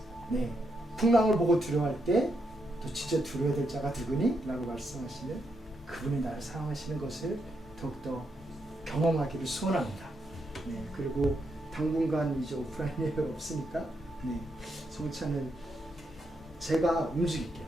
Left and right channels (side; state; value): both; normal; correlation 0.80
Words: 네, 풍랑을 보고 두려워할 때 또 진짜 두려워야 될 자가 누구니? 라고 말씀하시는 그분이 나를 사랑하시는 것을 더욱더 경험하기를 소원합니다. 네, 그리고 당분간 이제 오프라인 예배 없으니까 네, 성찬은 제가 움직일게요.